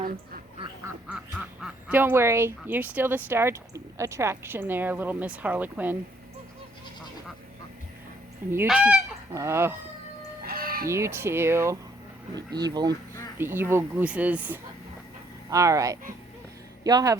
Don't worry, you're still the star attraction there, little Miss Harlequin. And you too. Oh, you too. The evil gooses. All right. Y'all have a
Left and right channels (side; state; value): both; normal; correlation 0.67